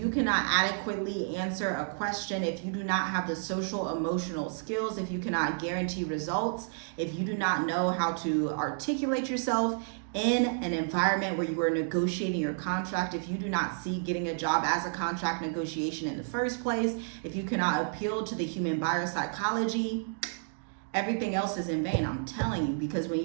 cannot adequately answer a question, if you do not have the social emotional skills, if you cannot guarantee results, if you do not know how to articulate yourself in an environment where you are negotiating your contract, if you do not see getting a job as a contract negotiation in the first place, if you cannot appeal to the human buyer psychology, everything else is in vain. I'm telling you, because when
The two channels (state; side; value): silent; left; digital silence